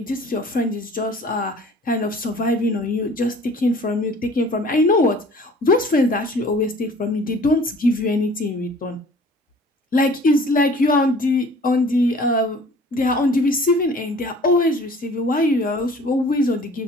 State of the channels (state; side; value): normal; both; correlation 0.49